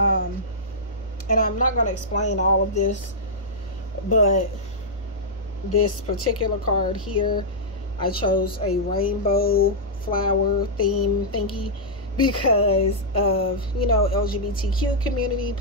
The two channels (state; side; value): normal; both; correlation -0.10